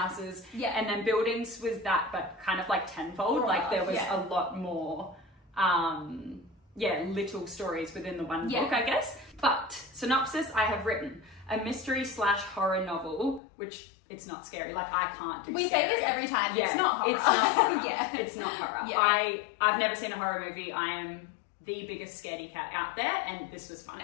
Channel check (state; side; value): drops out; right; at 13.4 s